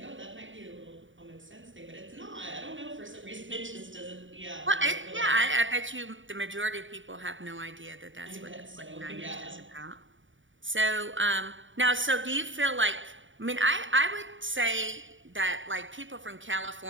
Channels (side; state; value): left; late; 0.56 ms